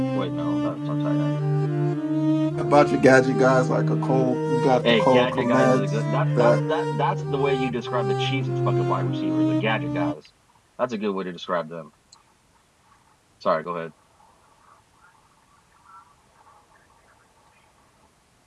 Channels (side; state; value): both; identical; correlation 1.00